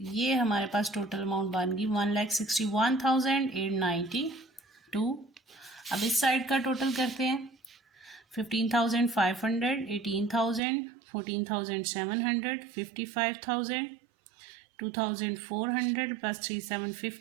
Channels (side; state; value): left; drops out; at 10.6 s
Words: हमारे पास टोटल अमाउंट बन गई 1,61,892। अब इस साइड का टोटल करते हैं 15,500, 18,000, 14,700, 55,000, 2,400 प्लस